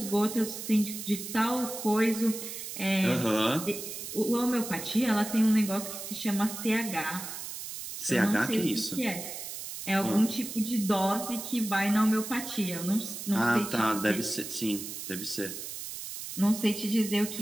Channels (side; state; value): right; noise; hiss, 8 dB below the sound